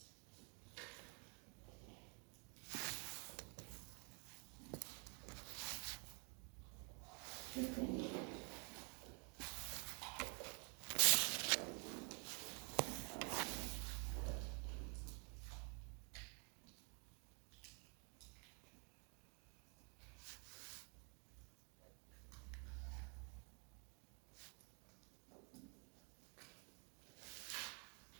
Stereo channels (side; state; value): left; quieter; 36.9 dB